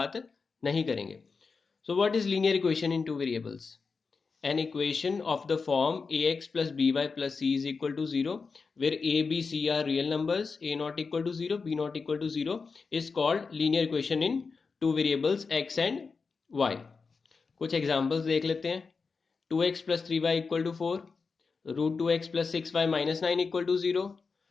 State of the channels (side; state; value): right; quieter; 4.8 dB